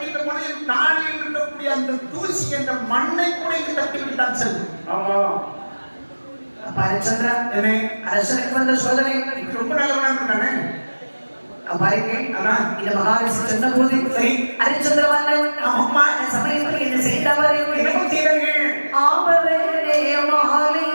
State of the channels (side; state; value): both; inverted; correlation -1.00